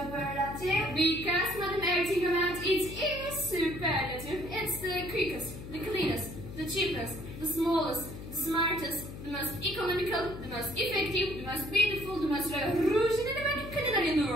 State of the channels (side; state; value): left; noise; hum, 11 dB below the sound